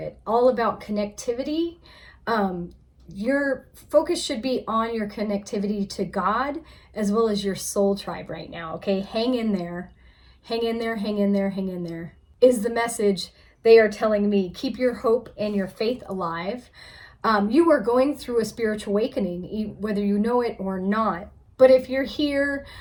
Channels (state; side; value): identical; both; correlation 1.00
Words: all about connectivity. Your focus should be on your connectivity to God as well as your soul tribe right now, okay? Hang in there, hang in there, hang in there, hang in there, is the message they are telling me. Keep your hope and your faith alive. You are going through a spiritual awakening, whether you know it or not. But if you're here,